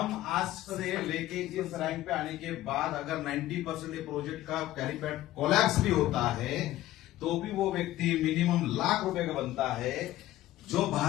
आज से लेके इस रैंक पे आने के बाद अगर 90% ये प्रोजेक्ट का कैरीपैड कोलैप्स भी होता है तो भी वो व्यक्ति मिनिमम लाख रुपए का बनता है जो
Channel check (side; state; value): right; quieter; 14.9 dB